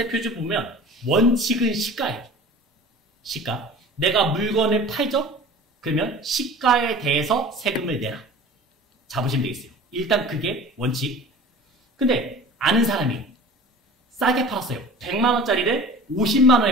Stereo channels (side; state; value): both; normal; correlation 0.41